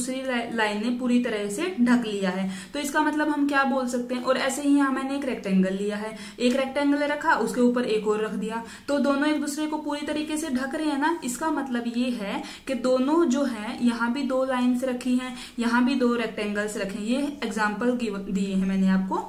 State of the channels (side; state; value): both; identical; correlation 1.00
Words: लाइन ने पूरी तरह से ढक लिया है। तो इसका मतलब हम क्या बोल सकते हैं, और ऐसे ही यहाँ मैंने एक रेक्टेंगल लिया है, एक रेक्टेंगल रखा, उसके ऊपर एक और रख दिया, तो दोनों एक दूसरे को पूरी तरीके से ढक रहे हैं ना। इसका मतलब ये है कि दोनों जो है, यहाँ भी 2 लाइन्स रखी हैं, यहाँ भी 2 रेक्टेंगल्स रखे हैं। ये एग्जाम्पल दिए हैं मैंने आपको।